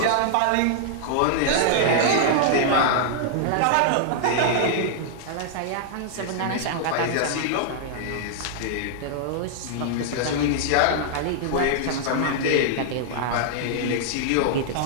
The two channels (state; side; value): different; both; correlation -0.01